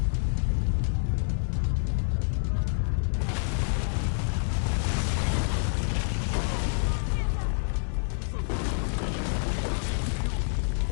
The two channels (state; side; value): silent; right; 60 dB below the other